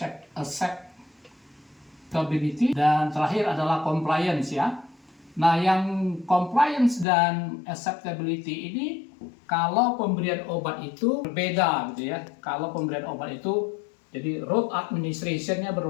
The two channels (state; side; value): drops out; right; at 7.1 s